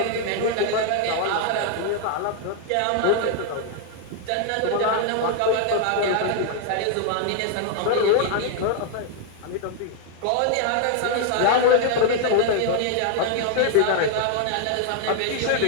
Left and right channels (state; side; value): different; both; correlation 0.00